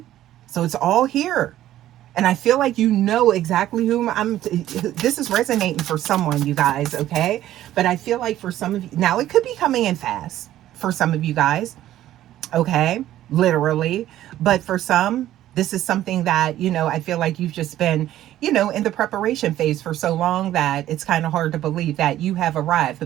So it's all here. And I feel like you know exactly whom this is resonating for someone, you guys, okay? But I feel like for some of you, now it could be coming in fast for some of you guys, okay? Literally. But for some, this is something that, I feel like you've just been, in the preparation phase for so long that it's kind of hard to believe that you have arrived.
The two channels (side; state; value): left; quieter; 13.3 dB